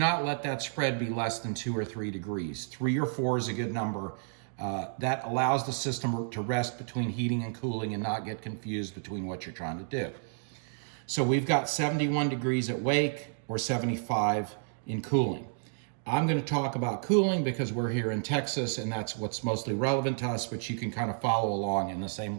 let that spread be less than 2 or 3 degrees. 3 or 4 is a good number. That allows the system to rest between heating and cooling and not get confused between what you're trying to do. So we've got 71 degrees at wake or 75 in cooling. I'm going to talk about cooling because we're here in Texas and that's what's mostly relevant to us, but you can kind of follow along, and the same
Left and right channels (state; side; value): silent; left; digital silence